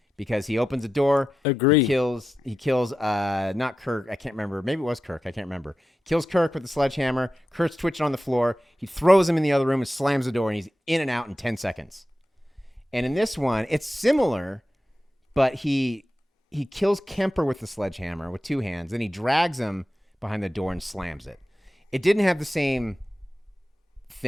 because he opens a door. Agree. He kills not Kirk. I can't remember. Maybe it was Kirk. I can't remember. Kills Kirk with the sledgehammer. Kirk's twitching on the floor. He throws him in the other room and slams the door, and he's in and out in 10 seconds. And in this one, it's similar, but he kills Kemper with the sledgehammer with two hands. Then he drags him behind the door and slams it. It didn't have the same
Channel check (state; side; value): normal; both; correlation 0.91